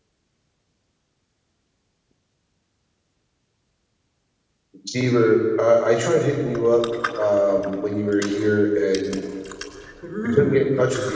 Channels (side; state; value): both; identical; correlation 1.00